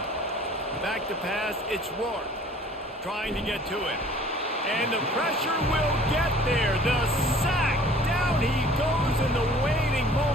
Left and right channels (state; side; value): normal; both; correlation 0.51